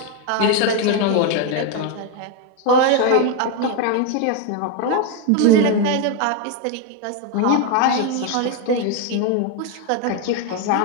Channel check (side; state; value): both; different; correlation 0.01